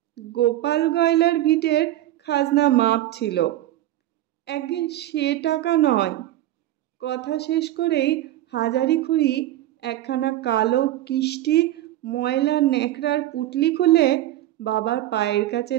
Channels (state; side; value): quieter; left; 14.3 dB